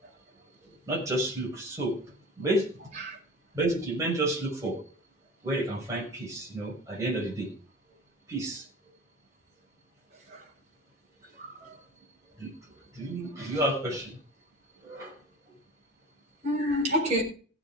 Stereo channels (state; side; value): normal; both; correlation 0.37